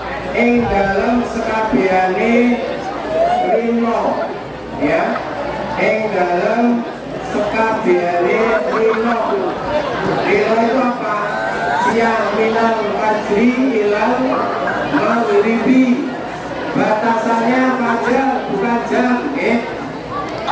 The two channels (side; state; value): both; identical; correlation 1.00